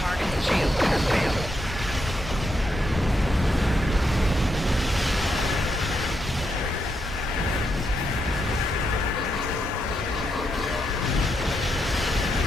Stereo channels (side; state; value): both; normal; correlation 0.81